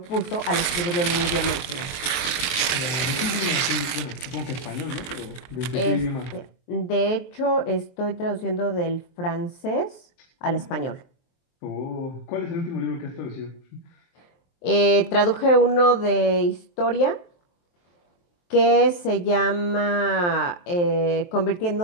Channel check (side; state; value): right; late; 23 ms